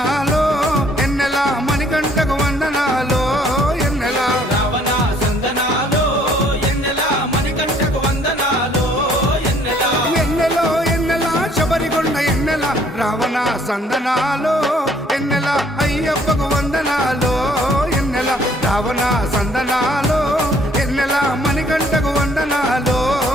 ఎన్నెల మణికంఠకు వందనాలో ఎన్నెల రావణ సందనాలో ఎన్నెల మణికంఠకు వందనాలో ఎన్నెల ఎన్నెలో ఎన్నెల శబరికొండ ఎన్నెల రావణ సందనాలో ఎన్నెల అయ్యప్పకు వందనాలో ఎన్నెల రావణ సందనాలో ఎన్నెల మణికంఠకు వందనాలో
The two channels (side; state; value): both; normal; correlation 0.61